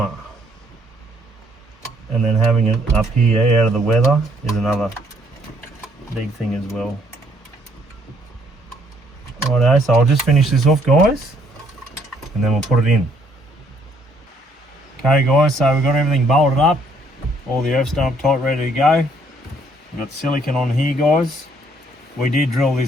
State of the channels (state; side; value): normal; both; correlation 0.67